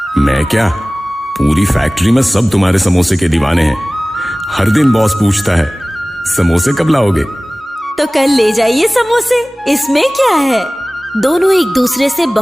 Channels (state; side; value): normal; both; correlation 0.98